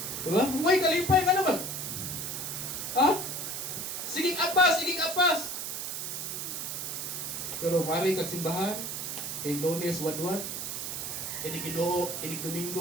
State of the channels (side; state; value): right; noise; hiss, 4 dB below the sound